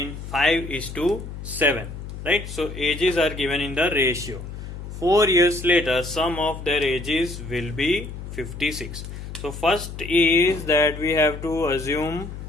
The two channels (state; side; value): noise; left; hum, 10 dB below the sound